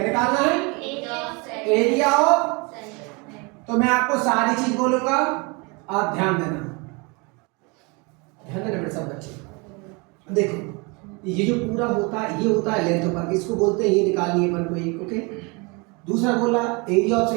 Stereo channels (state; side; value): quieter; left; 29.2 dB